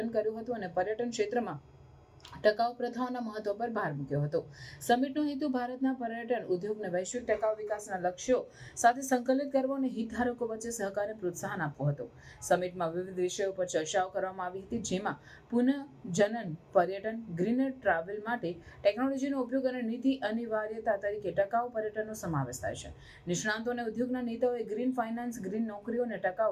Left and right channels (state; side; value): identical; both; correlation 1.00